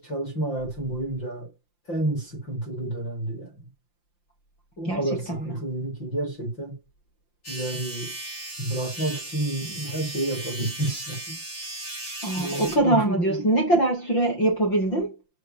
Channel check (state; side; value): late; right; 5.8 ms